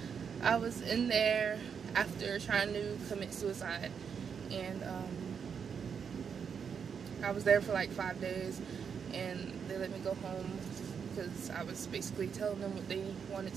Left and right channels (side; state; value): left; quieter; 6.8 dB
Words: I was in there after trying to commit suicide, and I was there for like 5 days, and they let me go home because I was basically telling them what they wanted